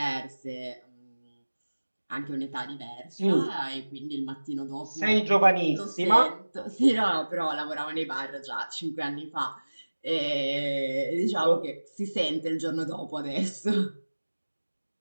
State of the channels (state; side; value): inverted; both; correlation -1.00